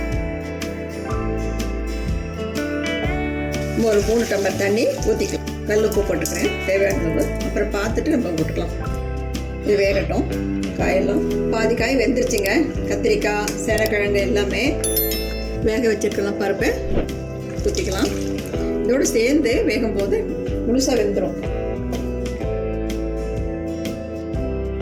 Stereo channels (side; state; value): both; identical; correlation 1.00